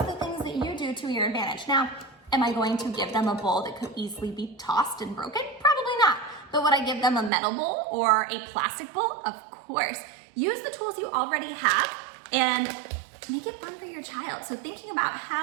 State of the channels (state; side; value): drops out; left; at 7.3 s